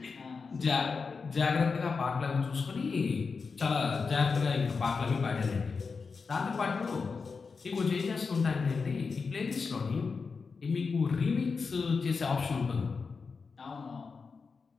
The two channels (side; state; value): right; quieter; 4.9 dB